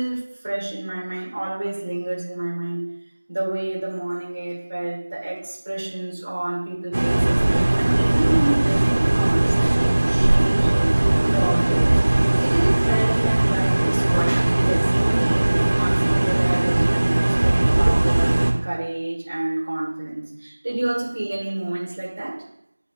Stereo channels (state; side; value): inverted; both; correlation -1.00